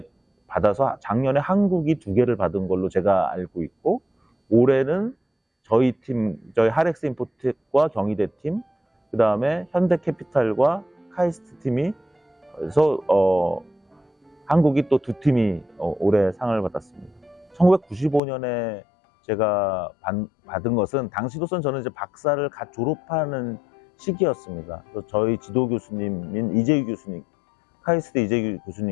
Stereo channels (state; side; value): drops out; right; at 18.2 s